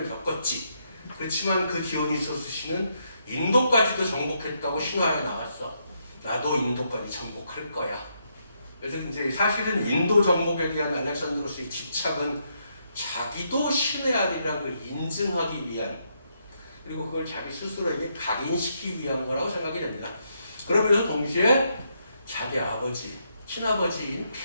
겪었지. 그렇지만 그 디오니소스 신은 인도까지도 정복했다고 신화에 나왔어. 나도 인도까지 정복할 거야. 그래서 이제 사실은 인도 정복에 대한 알렉산드로스의 집착은 자기도 신의 아들이라는 걸 인증하기 위한, 그리고 그걸 자기 스스로에게 각인시키기 위한 거라고 생각이 됩니다. 그러면서 동시에 자기 아버지, 친아버지인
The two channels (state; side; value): inverted; both; correlation -0.77